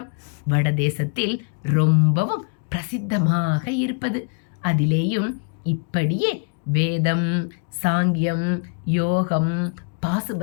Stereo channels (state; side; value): quieter; right; 38.1 dB